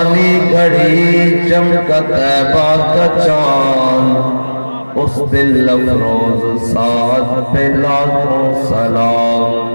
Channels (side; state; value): both; inverted; correlation -1.00